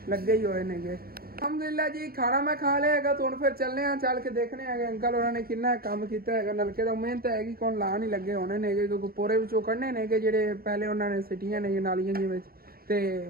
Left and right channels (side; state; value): left; late; 0.44 ms